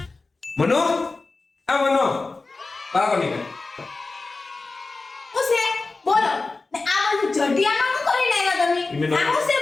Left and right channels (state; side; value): quieter; right; 3.6 dB